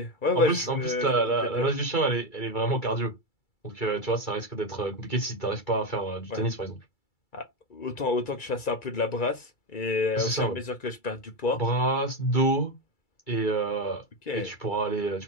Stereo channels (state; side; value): late; right; 2.3 ms